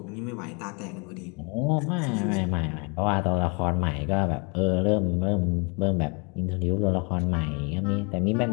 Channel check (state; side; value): quieter; right; 32.4 dB